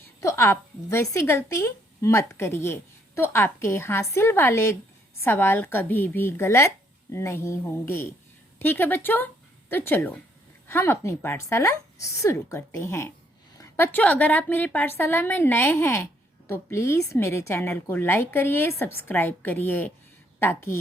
तो आप वैसी गलती मत करिए, तो आपके हासिल वाले सवाल कभी भी गलत नहीं होंगे। ठीक है बच्चों, तो चलो हम अपनी पाठशाला शुरू करते हैं। बच्चों, अगर आप मेरी पाठशाला में नए हैं तो प्लीज़ मेरे चैनल को लाइक करिए, सब्सक्राइब करिए,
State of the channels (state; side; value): normal; both; correlation 0.69